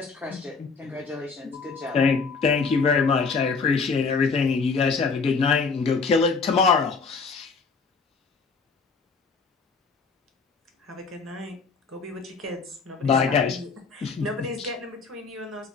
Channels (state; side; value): quieter; right; 4.7 dB